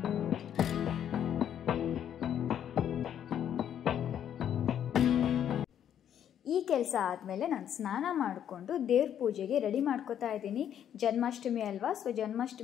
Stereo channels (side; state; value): right; quieter; 9.7 dB